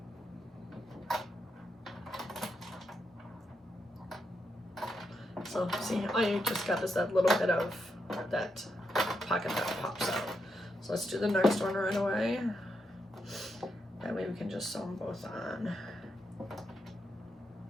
So see, all you just got is that little bit of that pocket that pops out. So let's do the next one right away. That way we can just sew them both on.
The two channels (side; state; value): both; normal; correlation 0.83